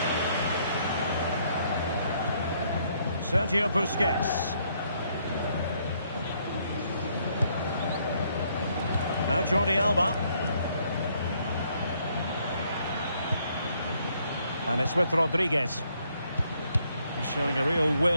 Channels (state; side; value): inverted; both; correlation -0.70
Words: Sergio Busquets. Now Jordi Alba. And it's with Rodriguez. He's showing a real